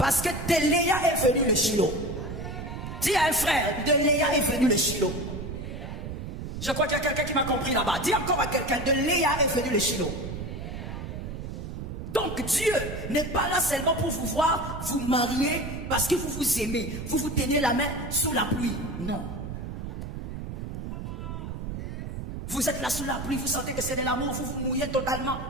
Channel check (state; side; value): noise; right; rumble, 7 dB below the sound